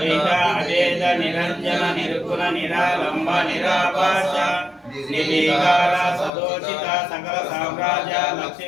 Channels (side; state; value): right; drops out; at 6.3 s